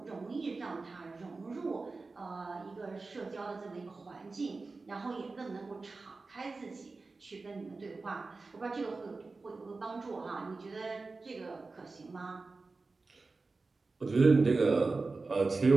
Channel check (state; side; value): quieter; left; 3.8 dB